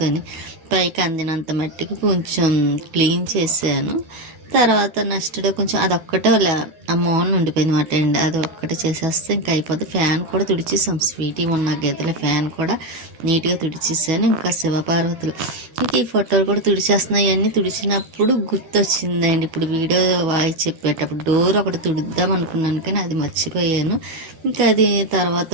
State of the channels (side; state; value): left; late; 13 ms